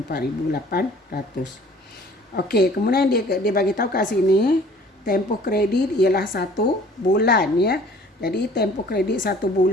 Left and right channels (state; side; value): normal; both; correlation 0.51